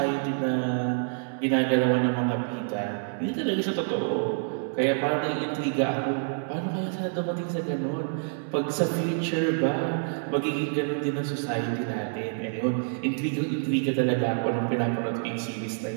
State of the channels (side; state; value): left; silent; 60 dB below the other